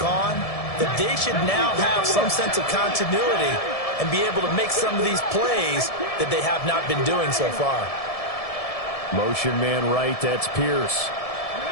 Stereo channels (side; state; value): right; late; 1.7 ms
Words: that they should now have some sense of continuity and be able to make some of these plays that they have not been doing so far. Motion man right, that's Pierce.